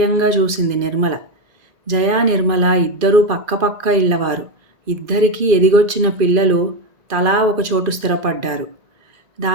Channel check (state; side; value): late; left; 1.9 ms